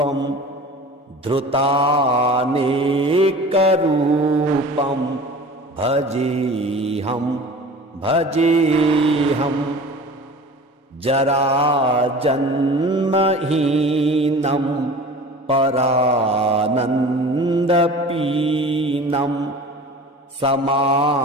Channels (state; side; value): normal; both; correlation 0.40